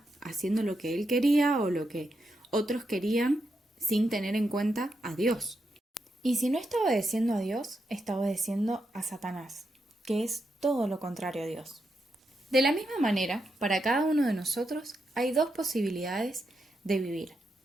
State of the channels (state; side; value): normal; both; correlation 0.84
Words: haciendo lo que él quería o lo que otros querían sin tener en cuenta a Dios. Y si no está obedeciendo a Dios, está obedeciendo a Satanás, que es todo lo contrario a Dios. De la misma manera, para cada uno de nosotros hay dos posibilidades de vivir: